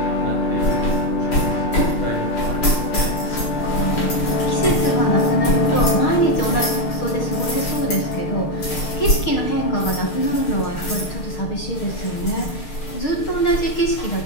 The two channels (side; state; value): right; late; 6.5 ms